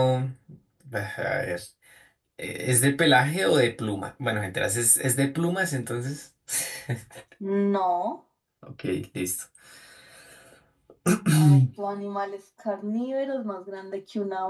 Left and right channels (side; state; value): both; identical; correlation 1.00